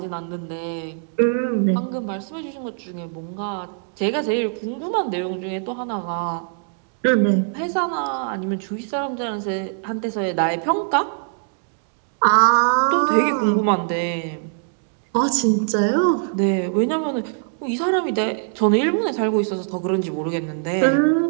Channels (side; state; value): left; silent; digital silence